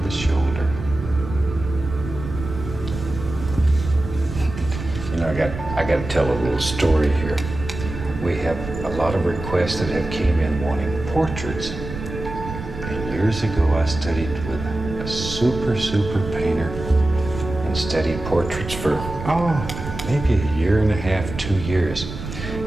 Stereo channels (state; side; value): noise; right; rumble, 9 dB below the sound